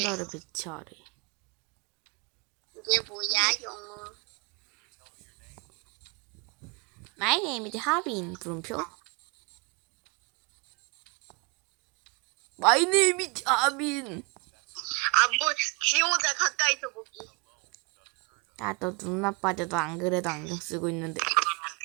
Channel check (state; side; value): quieter; left; 29.4 dB